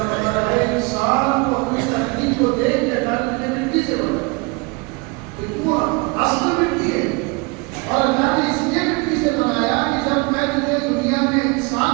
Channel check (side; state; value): left; quieter; 28.6 dB